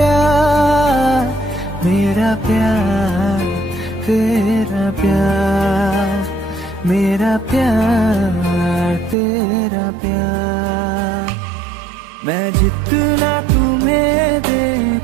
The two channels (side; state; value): left; drops out; at 9.2 s